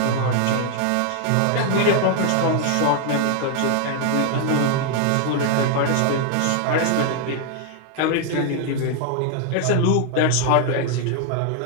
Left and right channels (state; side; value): different; both; correlation 0.00